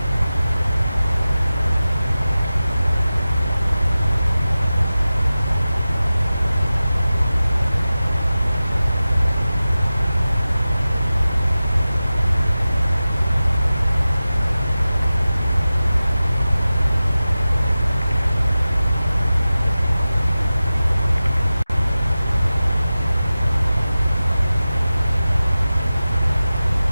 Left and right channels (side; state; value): both; inverted; correlation -0.96